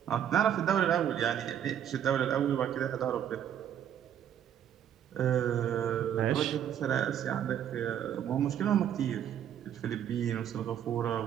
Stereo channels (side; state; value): left; quieter; 9.8 dB